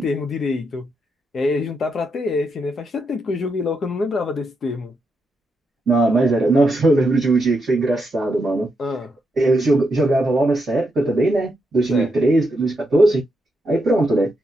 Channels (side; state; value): both; normal; correlation 0.82